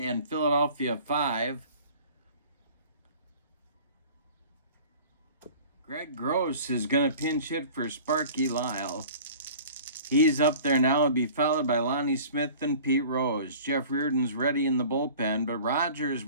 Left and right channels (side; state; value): both; inverted; correlation -0.45